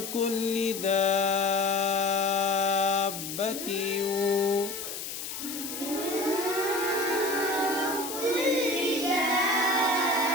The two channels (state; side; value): noise; left; hiss, 7 dB below the sound